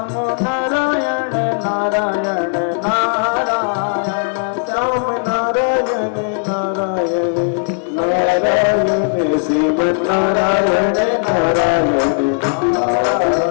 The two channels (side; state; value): right; silent; 66 dB below the other